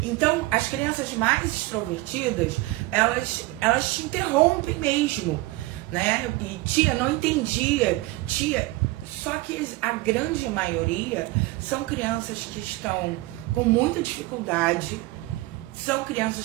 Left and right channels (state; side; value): quieter; left; 20.0 dB